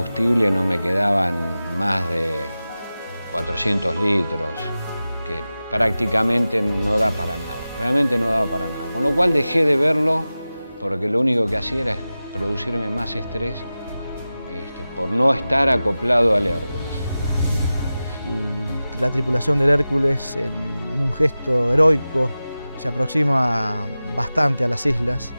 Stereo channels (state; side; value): inverted; both; correlation -0.95